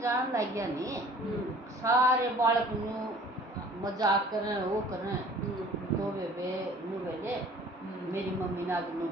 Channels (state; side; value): normal; both; correlation 0.50